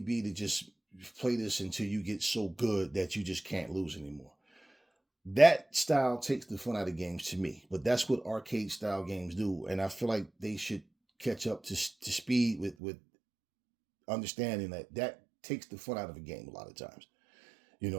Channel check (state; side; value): drops out; left; at 12.8 s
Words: to just play this until you get so good that you just can't lose anymore. That style takes the fun out of games to me, but that's what arcade style games do. And I feel like they should catch up to speed with understanding that takes the fun out of a game a lot of times. You